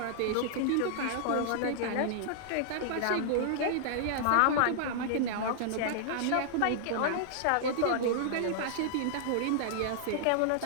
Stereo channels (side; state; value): both; different; correlation -0.01